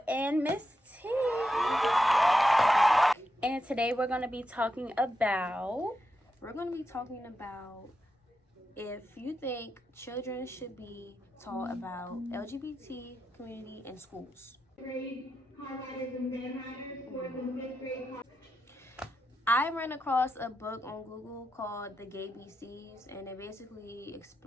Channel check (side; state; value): both; normal; correlation 0.86